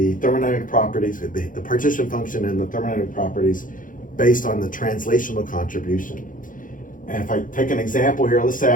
thermodynamic properties, the partition function and the thermodynamic properties based on the translational contribution. And if I take an example here, let's say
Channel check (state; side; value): late; right; 0.39 ms